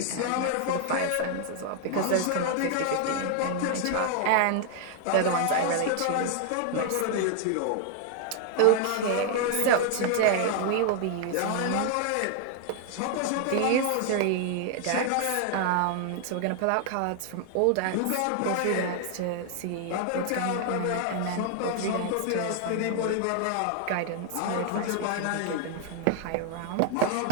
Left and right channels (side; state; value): both; different; correlation 0.00